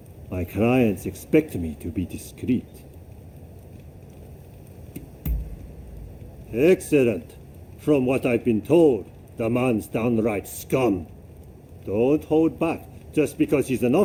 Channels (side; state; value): both; identical; correlation 1.00